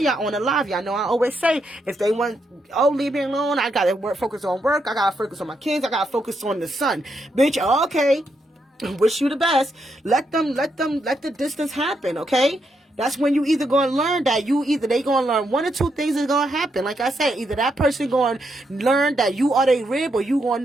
on the live. Y'all know I always say, if they want, oh, leave me alone, I gotta focus on work. I gotta focus on my kids. I gotta focus on the son. Bitch, okay. Wish you the best. Let the distance happen, okay? That's when you either gonna learn that they gonna learn one or two things is gonna happen. Like I said, either that person gonna learn that you are their rib, or you gonna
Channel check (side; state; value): both; normal; correlation 0.80